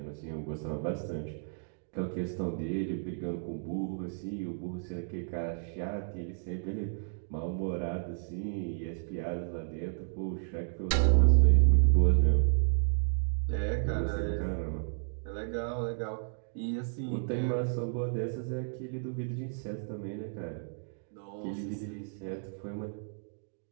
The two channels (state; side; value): silent; left; digital silence